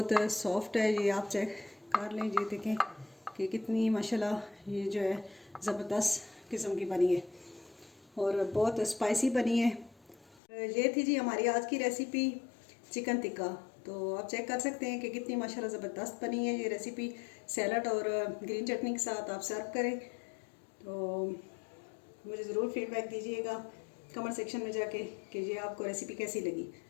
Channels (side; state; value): right; drops out; at 10.4 s